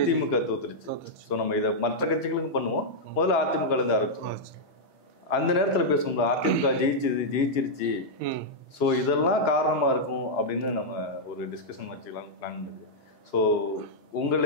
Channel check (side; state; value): both; normal; correlation -0.06